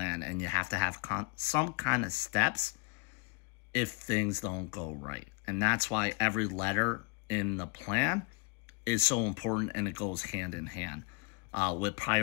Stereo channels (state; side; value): quieter; right; 29.1 dB